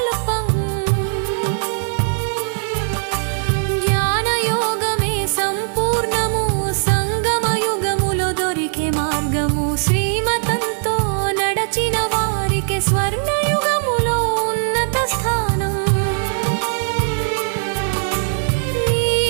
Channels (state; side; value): silent; left; digital silence